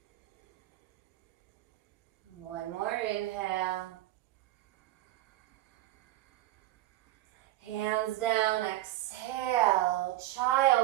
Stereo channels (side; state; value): left; quieter; 15.6 dB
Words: One more inhale. Hands down, exhale,